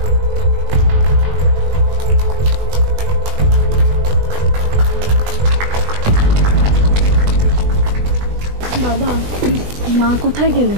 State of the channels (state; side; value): late; left; 20 ms